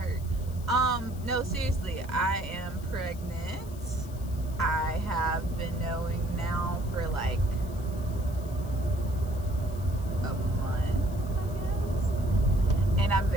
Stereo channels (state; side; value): noise; left; hiss, 21 dB below the sound